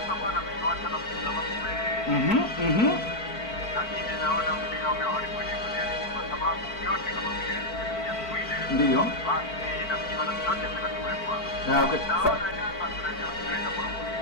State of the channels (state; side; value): late; right; 4.5 ms